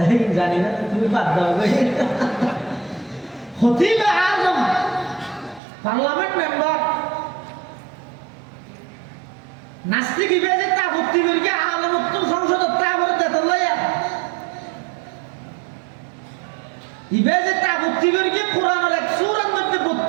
জানি না তুমি বাদ দাও খতিব আজম পার্লামেন্ট মেম্বার নাস্তিক ইবেজে তা ভর্তি করিকে আলম উত্তম সংসদ তা বলে দেতল লইয়া ইবেজে তা ভর্তি করিকে কোরআনের এক সূরার মধ্যে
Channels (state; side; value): drops out; left; at 5.6 s